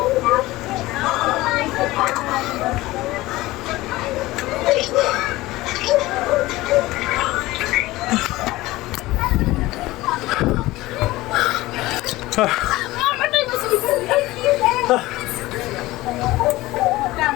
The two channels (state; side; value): quieter; right; 18.6 dB